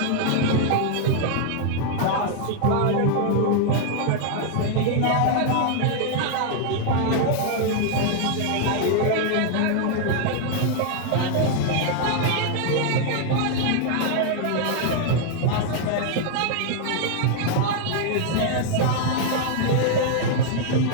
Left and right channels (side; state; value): both; different; correlation 0.00